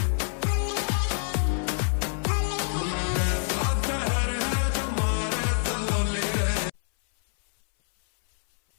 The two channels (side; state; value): right; silent; 59 dB below the other